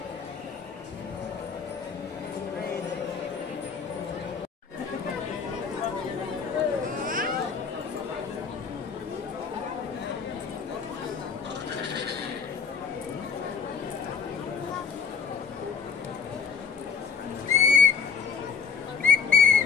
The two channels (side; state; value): right; quieter; 6.3 dB